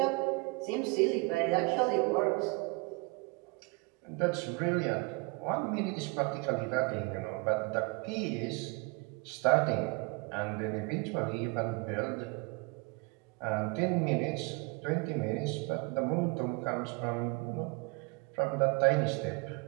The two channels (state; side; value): quieter; left; 28.4 dB